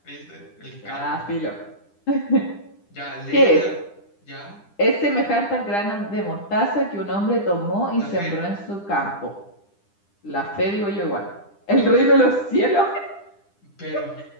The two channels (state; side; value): late; right; 10 ms